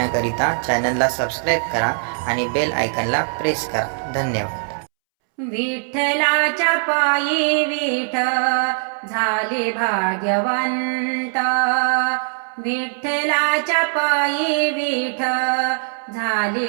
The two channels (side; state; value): left; silent; 65 dB below the other